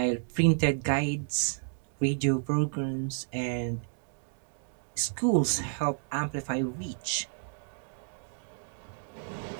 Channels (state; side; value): silent; left; digital silence